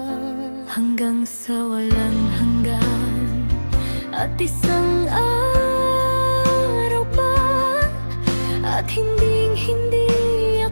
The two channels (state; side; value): inverted; both; correlation -1.00